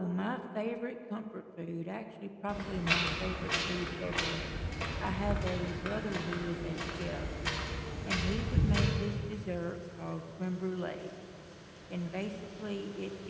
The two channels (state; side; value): identical; both; correlation 1.00